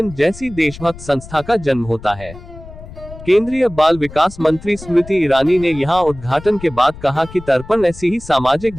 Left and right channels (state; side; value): noise; left; rumble, 16 dB below the sound